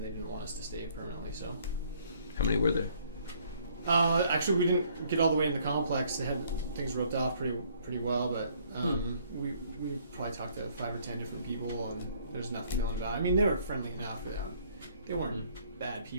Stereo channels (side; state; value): both; inverted; correlation -0.63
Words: they didn't want us to stay permanently. So, How many were there? actually, we didn't get all the way in the complex. They had things roped off pretty well, but we probably talked to 5 or 10 different people, and there's nothing known about it. I mean, they were friendly enough. They weren't bad